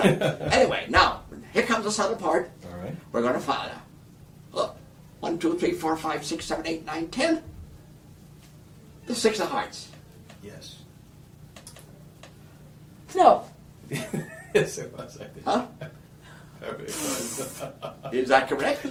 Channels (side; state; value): both; identical; correlation 1.00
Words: Anyway, now here comes the subtle part. All right. We're going to follow. Look, 1, 2, 3, 4, 5, 6, 7, 8, 9, 10. The 6 of hearts. Yes. No. Yes, it was. I think. Huh? It was. Is that correct?